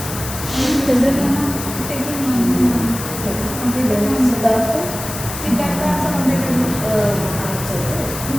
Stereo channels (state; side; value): noise; left; hiss, 8 dB below the sound